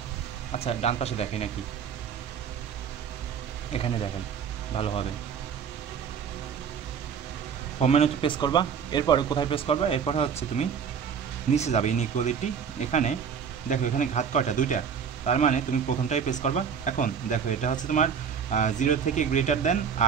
আচ্ছা ডান পাশে দেখাই নাকি, এখানে দেখাই ভালো হবে। হোম মেনুতে প্রেস করবা, এরপরে কোথায় প্রেস করবা? এরপরে হচ্ছে তুমি নিচে যাবে, ইনইকুয়ালিটি। এখানে দেখো এখানে ঘাত কয়টা? 2টা। তার মানে তুমি প্রথমটাই প্রেস করবা। এখন দেখো এটা হচ্ছে তোমার 0 থেকে গ্রেটার দেন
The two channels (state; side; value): quieter; left; 7.1 dB